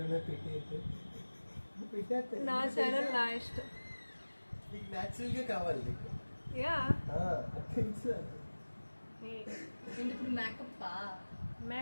నా ఛానల్ నా ఇష్టం. నీకు న్యాచురల్గా కావాలి నీకు. యా తెలుసు. ఇప్పుడు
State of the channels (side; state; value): both; inverted; correlation -1.00